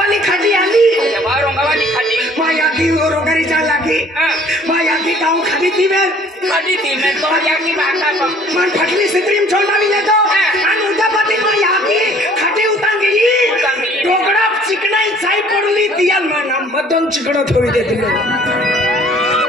खटी आली बा रंगावाली खटी मा याकी रोगरी जा लागी मा याकी गांव खटी थी में तो याकी बाका मन फटली सिंदरी में चोंडा भी तो अन उदापति मा याकी खटी उतांगी टोकड़ा चिकनाई साई पड़ली दियाल मा नाम मदन चिकड़ो थोड़ी दे दिलो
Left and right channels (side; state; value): both; normal; correlation 0.55